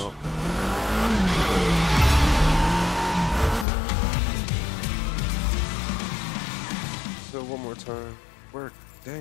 up. So one more time. Work.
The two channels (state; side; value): drops out; right; at 3.7 s